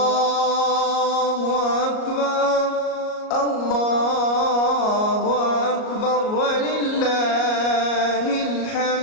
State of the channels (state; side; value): late; right; 38 ms